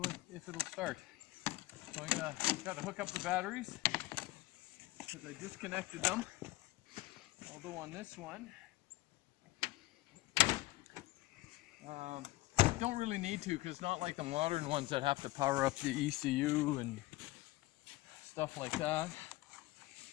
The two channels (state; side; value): quieter; right; 19.0 dB